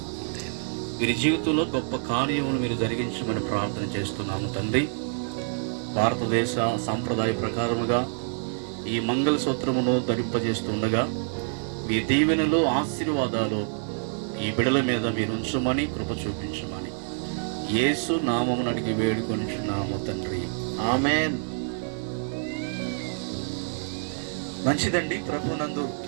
వీరి జీవితంలో గొప్ప కార్యమును మీరు జరిగించమని ప్రార్థన చేస్తున్నాము తండ్రి. భారతదేశ సాంప్రదాయ ప్రకారముగా ఈ మంగళసూత్రమును ధరింపజేస్తుండగా మీ దీవెనలు, ఆశీర్వాదాలు ఈ బిడల మీద మీరు ఉంచమని కృప చూపించమని యేసు నామమును అడిగి వేడుకొనిచున్నాము తండ్రి. ఆమేన్. మంచిదండి. ప్రభునందు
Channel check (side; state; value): left; silent; digital silence